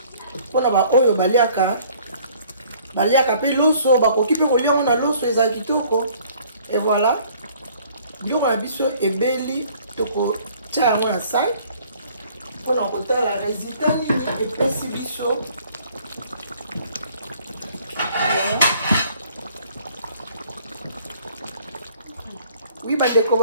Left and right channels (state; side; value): inverted; both; correlation -0.56